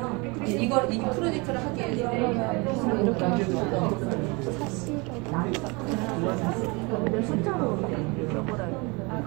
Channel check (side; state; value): left; quieter; 28.0 dB